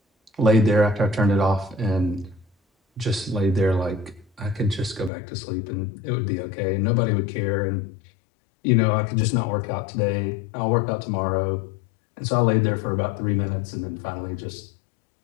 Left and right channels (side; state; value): right; drops out; at 5.1 s